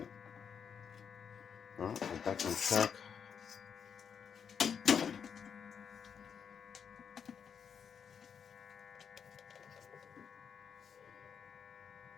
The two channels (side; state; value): right; quieter; 7.2 dB